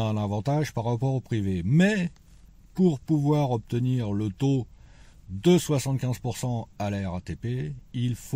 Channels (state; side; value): identical; both; correlation 1.00